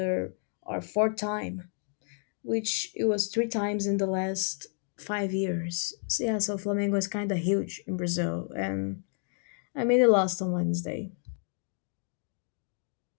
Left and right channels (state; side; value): silent; right; 57 dB below the other